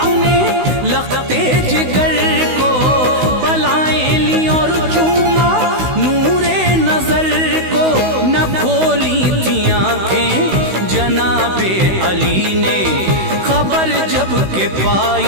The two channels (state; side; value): late; left; 16 ms